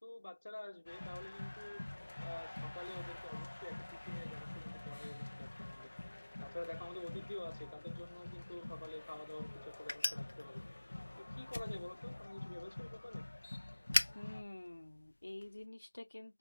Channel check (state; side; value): inverted; both; correlation -1.00